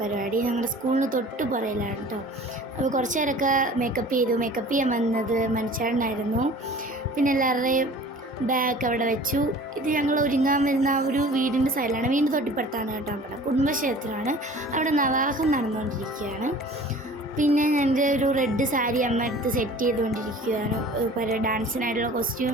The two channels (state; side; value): normal; both; correlation 0.45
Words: ഞങ്ങളുടെ സ്കൂളിന് തൊട്ട് പുറയിലാണ് കേട്ടോ. അപ്പോൾ കുറച്ച് നേരമൊക്കെ മേക്കപ്പ് ചെയ്യാൻ വന്നത് മനുഷ്യാടനായിരുന്നു. പിന്നെ എല്ലാവരുടെയും ബാഗ് അവിടെ വെച്ചു. ഇത് ഞങ്ങൾ ഒരുങ്ങാൻ വരുന്ന ആ ഒരു വീടിൻ്റെ സൈഡിലാണ്, വീടിൻ്റെ തൊട്ടിപ്പുറത്താണ് കേട്ടോ. അവിടെ കുടുംബക്ഷേത്രമാണ്. അവിടെ നവാഹം നടന്നുകൊണ്ടിരിക്കുകയാണ്. പിന്നെ എൻ്റെ ഒരു റെഡ് സാരി അമ്മ എടുത്ത് സെറ്റ് ചെയ്തുകൊണ്ടിരിക്കുകയാണ്. ഡാൻസിനായിട്ടുള്ള